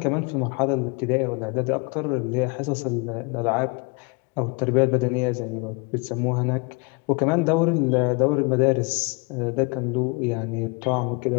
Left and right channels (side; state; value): right; quieter; 30.9 dB